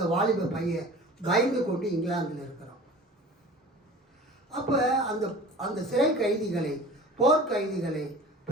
வாலிப பையன் பயந்து கொண்டு இங்கிலாந்தில் இருக்கிறான். அப்போ அந்த சிறை கைதிகளை, போர் கைதிகளை,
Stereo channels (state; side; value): normal; both; correlation 0.41